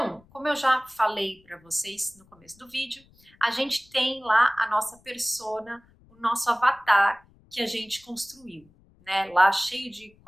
como eu já falei para vocês no começo do vídeo, a gente tem lá a nossa persona, o nosso avatar que a gente construiu, né? Lá cheio de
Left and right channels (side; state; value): left; noise; rumble, 30 dB below the sound